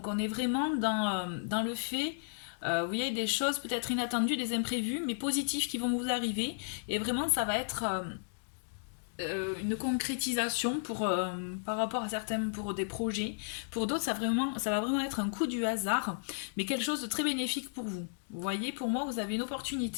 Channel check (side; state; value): right; silent; digital silence